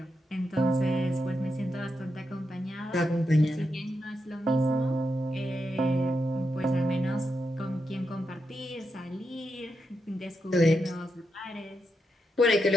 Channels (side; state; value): both; normal; correlation 0.85